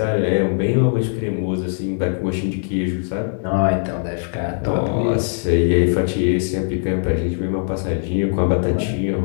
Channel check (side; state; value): right; silent; digital silence